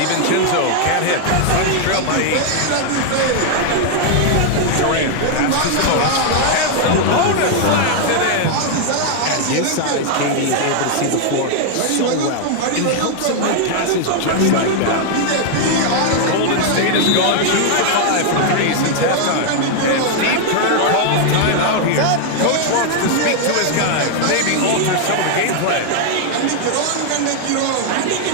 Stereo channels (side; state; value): both; different; correlation 0.00